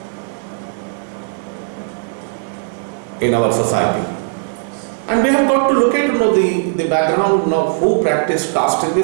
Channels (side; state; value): left; silent; digital silence